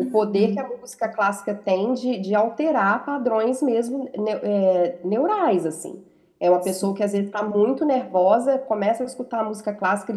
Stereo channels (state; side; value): identical; both; correlation 1.00